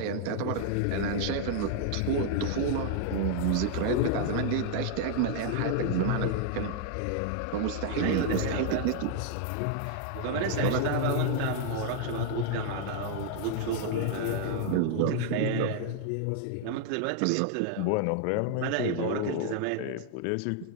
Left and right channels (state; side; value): different; both; correlation 0.00